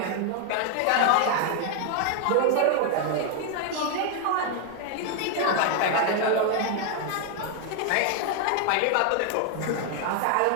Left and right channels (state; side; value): different; both; correlation 0.00